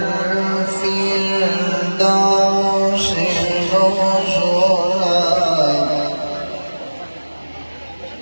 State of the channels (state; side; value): inverted; both; correlation -1.00